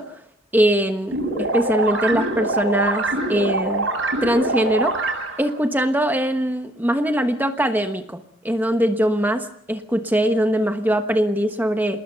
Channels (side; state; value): both; normal; correlation 0.65